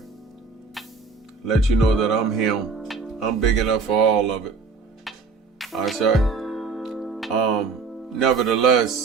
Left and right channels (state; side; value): quieter; left; 4.6 dB